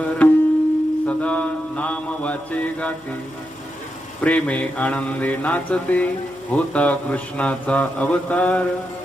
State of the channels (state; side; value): noise; left; hum, 29 dB below the sound